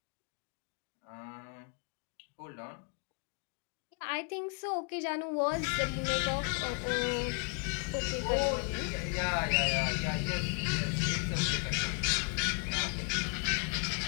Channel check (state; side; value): quieter; right; 31.9 dB